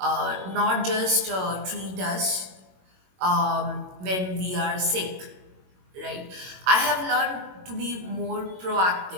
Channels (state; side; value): late; left; 22 ms